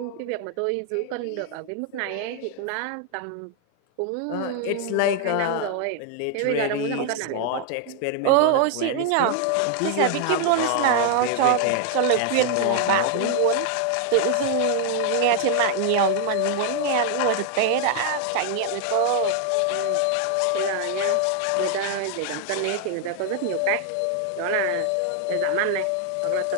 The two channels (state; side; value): different; both; correlation 0.00